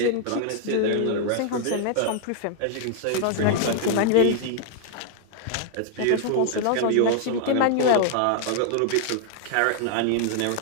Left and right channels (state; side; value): different; both; correlation 0.00